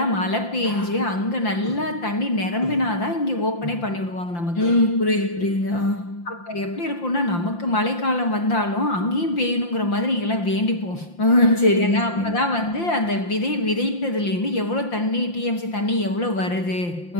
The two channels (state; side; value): late; right; 5.8 ms